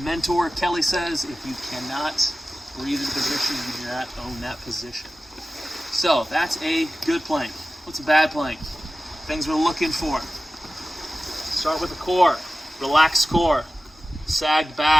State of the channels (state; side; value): normal; both; correlation 0.95